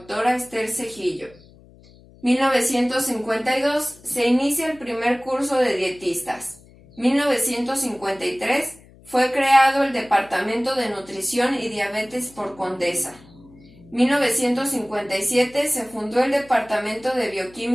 Esther Cejillo. 1952. Se inicia el primer curso de dietistas. 1953. Fue creado el Departamento de Nutrición y Diabetes por Condesa. 1957 se fundó el Departamento de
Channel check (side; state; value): left; noise; hum, 25 dB below the sound